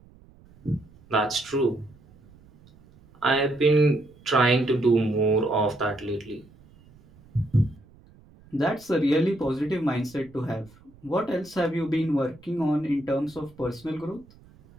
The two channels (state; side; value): noise; right; rumble, 26 dB below the sound